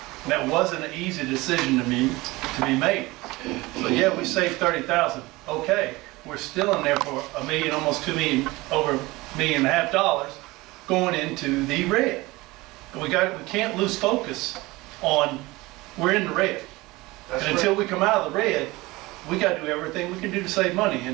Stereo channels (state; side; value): quieter; left; 21.1 dB